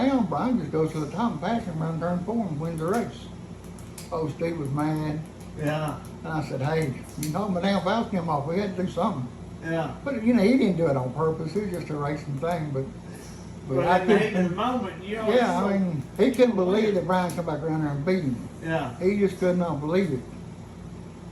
Brian just goes to the top and passes him around turn 4 and wins the race. Oh, Steve was mad. Yeah. And I said, hey, you knocked my damn valve stem off, we had to do something. Yeah. But you know, he didn't do it on purpose, it was just a racing thing, but But I in the heat of the couldn't, moment, you know. yeah, I mean, he couldn't believe that Brian come back around there and beat him. Yeah. He just could not believe it.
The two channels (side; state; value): both; identical; correlation 1.00